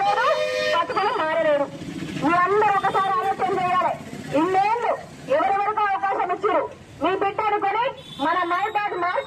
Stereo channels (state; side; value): identical; both; correlation 1.00